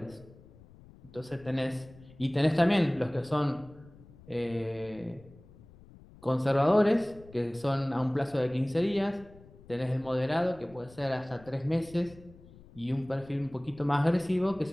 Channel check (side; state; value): left; noise; rumble, 22 dB below the sound